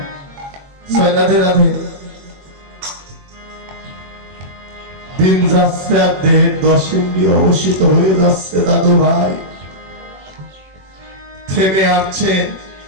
রাধে রাধে। দিন যাচ্ছে আর দেহের 10 ইন্দ্রিয় অবশিষ্ট হয়ে যাচ্ছে দাদু ভাই, থেমে আসছে।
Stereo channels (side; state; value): left; late; 21 ms